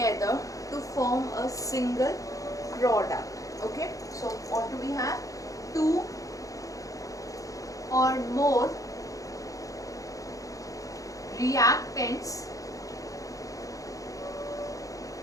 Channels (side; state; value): right; late; 0.16 ms